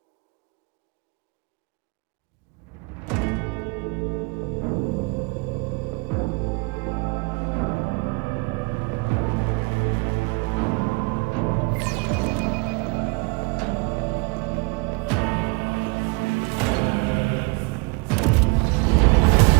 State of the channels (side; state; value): left; quieter; 27.9 dB